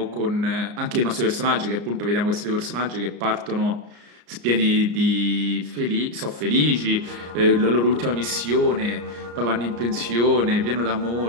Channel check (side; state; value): left; late; 34 ms